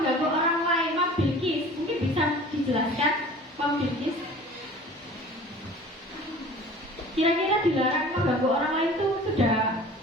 orang lain. Mom Bilkis, mungkin bisa dijelaskan Mom Bilkis? Kira-kira dilarang mengganggu orang lain itu sudah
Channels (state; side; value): normal; both; correlation 0.44